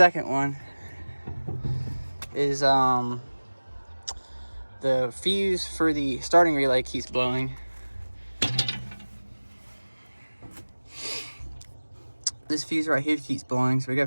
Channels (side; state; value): both; inverted; correlation -1.00